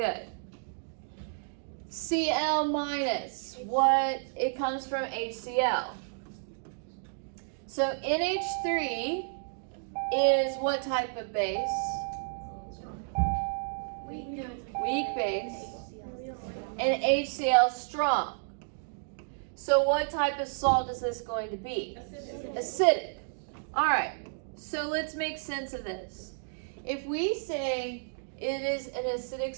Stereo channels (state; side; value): silent; left; digital silence